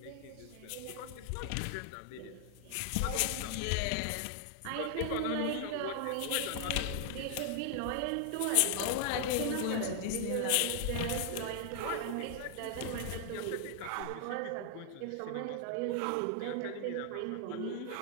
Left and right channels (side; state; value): both; different; correlation 0.00